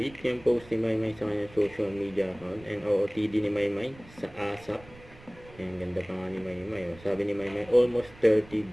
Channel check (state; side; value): noise; right; rumble, 22 dB below the sound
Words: yung post ni Maymay sa kanyang social media account and OOTD ni Maymay sa ASAP. Ang ganda pa nga ni Maymay. Oh. Sabi ni Maymay, almost